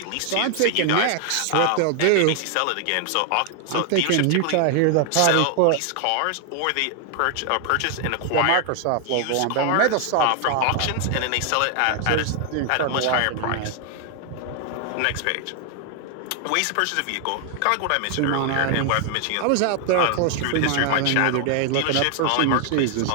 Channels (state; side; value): different; both; correlation 0.00